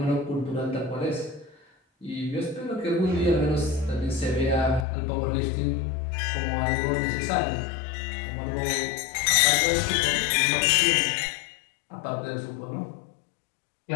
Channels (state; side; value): drops out; right; at 4.9 s